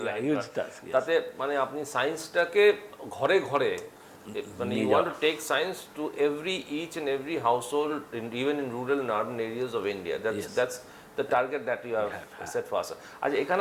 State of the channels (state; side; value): identical; both; correlation 1.00